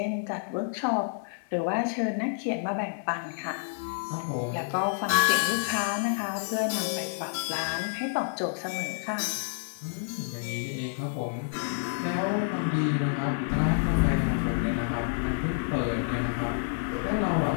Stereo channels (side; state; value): right; silent; 59 dB below the other